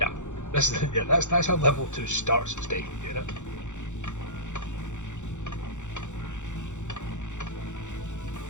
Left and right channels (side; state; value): right; late; 0.85 ms